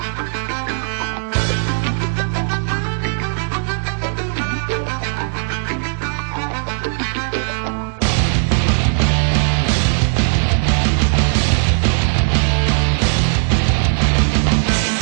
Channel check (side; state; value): left; silent; 67 dB below the other